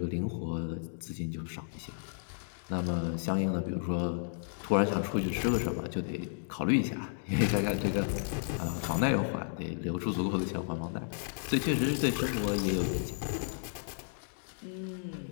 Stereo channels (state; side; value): silent; right; digital silence